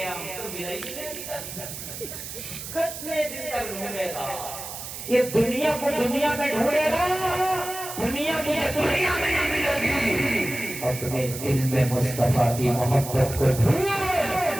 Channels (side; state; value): right; noise; hiss, 9 dB below the sound